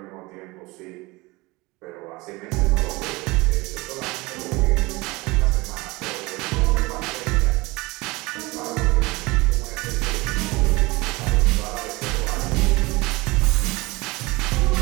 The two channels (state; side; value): quieter; left; 23.0 dB